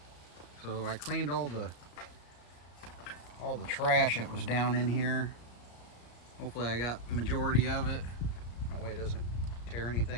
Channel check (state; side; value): late; right; 34 ms